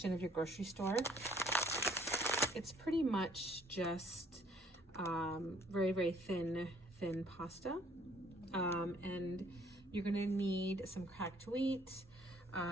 of your grocery store. It's pretty much just very, very thin pasta. And you're gonna need some cracked wheat,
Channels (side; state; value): both; normal; correlation 0.61